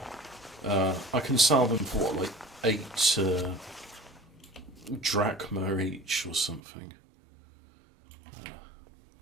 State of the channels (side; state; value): left; drops out; at 6.6 s